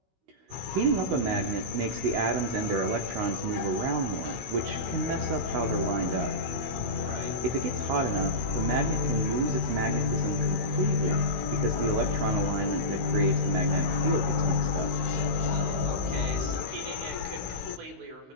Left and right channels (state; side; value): late; left; 16 ms